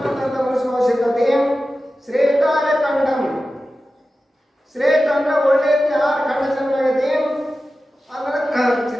ಮನುಷ್ಯ ಅವಶ್ಯಕತೆ. ಶ್ರೇಷ್ಠಾಯ ಕಂಡಂ, ಶ್ರೇಷ್ಠ ಅಂದ್ರೆ ಒಳ್ಳೆ 6 ಖಂಡ ಚೆನ್ನಾಗೈತಿ ಅಂದ್ರೆ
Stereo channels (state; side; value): normal; both; correlation 0.94